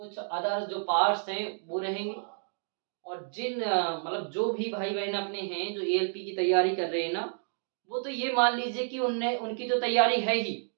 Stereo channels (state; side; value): silent; left; digital silence